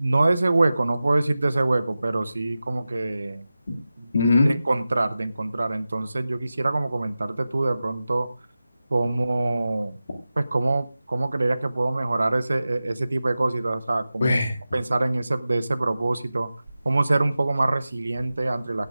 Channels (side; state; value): both; inverted; correlation -0.95